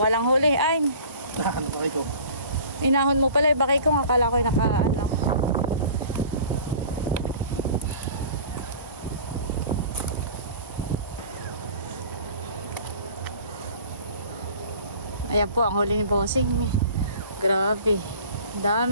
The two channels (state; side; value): inverted; both; correlation -0.44